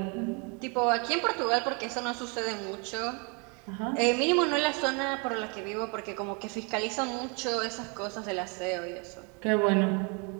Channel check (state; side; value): quieter; left; 33.8 dB